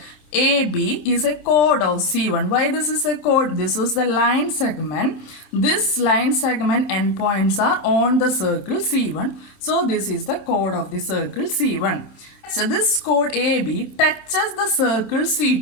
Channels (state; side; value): late; right; 27 ms